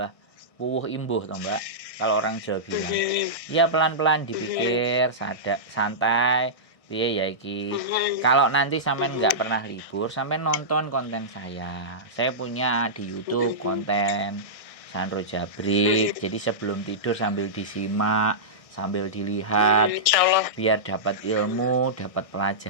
wuh imbuh toh, Mbak. Kalau orang Jawa bilang. Ya pelan-pelan dipikir, santai. Piye ya iki. Kalau nanti sampean nggak pernah libur, sampean nonton konten saya. Saya punya di YouTube konten Sandro Jabrik. Jadi sebelum tidur sambil disimak, sambil dilihat, biar dapat ilmu, dapat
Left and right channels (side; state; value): right; late; 1.6 ms